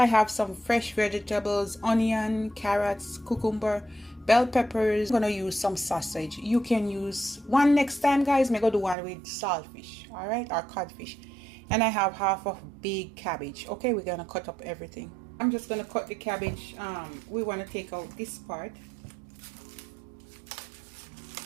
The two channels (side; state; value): left; drops out; at 9.0 s